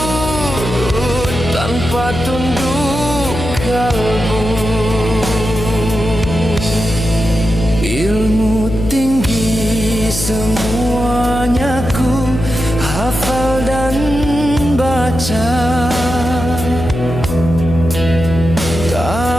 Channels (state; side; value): noise; left; hum, 6 dB below the sound